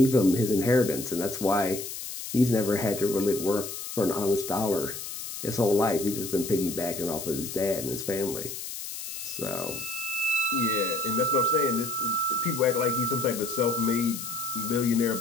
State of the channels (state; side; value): noise; left; hiss, 8 dB below the sound